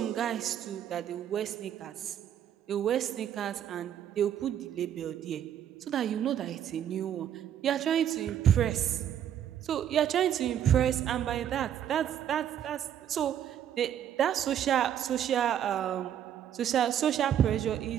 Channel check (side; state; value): left; quieter; 10.0 dB